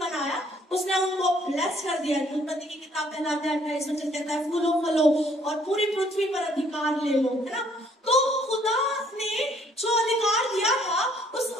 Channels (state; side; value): normal; both; correlation 0.64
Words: उसने उनको ब्लेस कर दिया। उत्पत्ति की किताब पहला अध्याय 28 वचन कहता है, फूलो फलो और पूरी पृथ्वी पर अधिकार ले लो, है ना। तो खुदा ने जो अधिकार दिया था उस